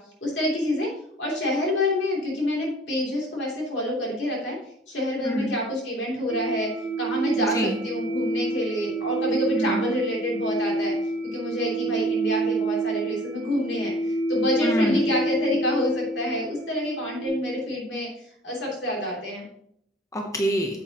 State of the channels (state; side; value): normal; both; correlation 0.51